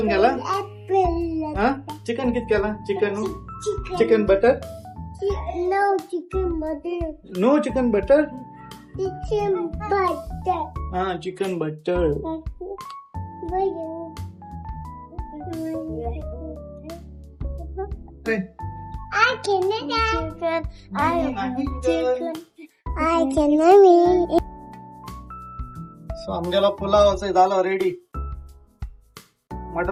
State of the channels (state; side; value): identical; both; correlation 1.00